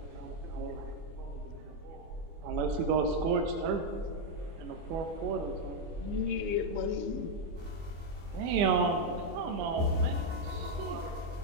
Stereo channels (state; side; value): late; left; 24 ms